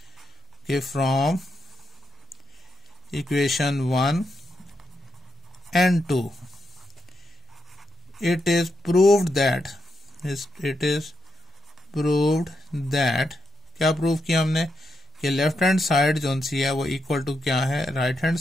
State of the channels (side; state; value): both; normal; correlation 0.84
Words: कि from equation 1 and 2 it is proved that क्या प्रूव किया हमने, कि लेफ्ट हैंड साइड जो सी है वो इक्वल टू क्या है राइट हैंड